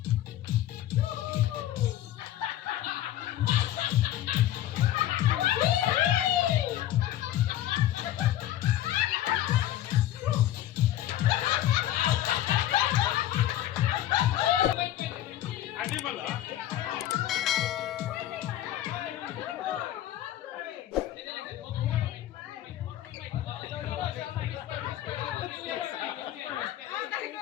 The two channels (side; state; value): right; quieter; 12.8 dB